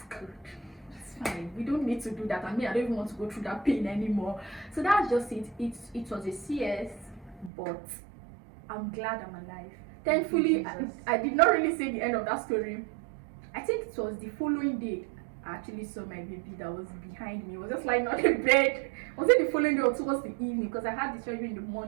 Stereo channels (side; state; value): left; drops out; at 7.5 s